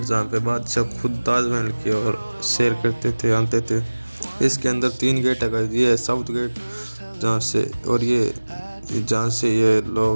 जहाँ पे बादशाह खुद ताजमहल की ओर सैर करते थे, आते थे। इसके अंदर 3 गेट है गाइस। ये है साउथ गेट जहाँ से, और ये जहाँ से ये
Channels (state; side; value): inverted; both; correlation -1.00